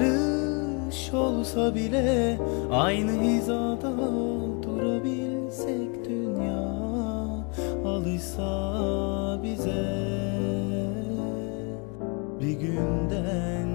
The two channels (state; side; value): quieter; right; 33.7 dB